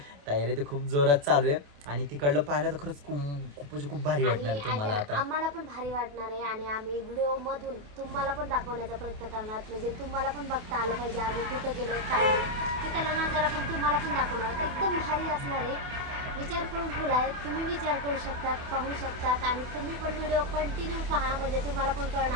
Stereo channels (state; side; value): late; left; 28 ms